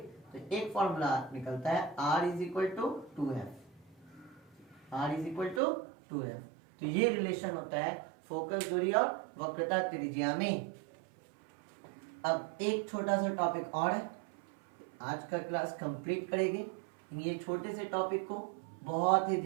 तो एक फॉर्मूला निकलता है R is equal to 2F। तो ये रिलेशन होता है फोकस दूरी और वक्रता त्रिज्या में। अब एक छोटा सा टॉपिक और है, आज का क्लास कंप्लीट करेंगे। ये छोटे से टॉपिक को बहुत ही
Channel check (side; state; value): left; drops out; at 5.6 s